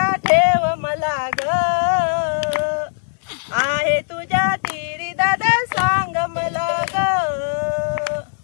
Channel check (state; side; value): silent; right; digital silence